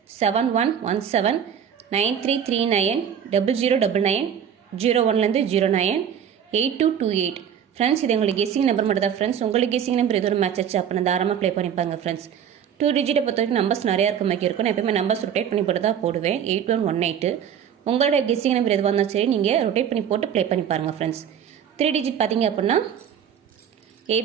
7117 9339 0099 01 09 8228 ஃப்ரெண்ட்ஸ். இது எங்களுக்கு கெஸ்ஸிங் நம்பர் மட்டும் தான் ஃப்ரெண்ட்ஸ். உங்களுக்கு கெஸ்ஸிங் நம்பர் எது ஒரு மேட்ச் ஆச்சு அப்படின்னா தாராளமாக ப்ளே பண்ணிப்பாங்க ஃப்ரெண்ட்ஸ். 2 டிஜிட்டை பொறுத்த வரைக்கும் நம்பர்ஸ் நிறையா இருக்க மாதிரி இருக்கும். நான் எப்பவுமே நம்பர்ஸ் ரொட்டேட் பண்ணி போட்டு தான் போடுவேன். 8118 உங்களோட கெஸ்ஸிங் நம்பர் எதுவாக இருந்தாலும் சரி நீங்கள் ரொட்டேட் பண்ணி போட்டு ப்ளே பண்ணி பாருங்கள் ஃப்ரெண்ட்ஸ். 3 டிஜிட் பார்த்தீங்க அப்படின்னா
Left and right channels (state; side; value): quieter; left; 8.6 dB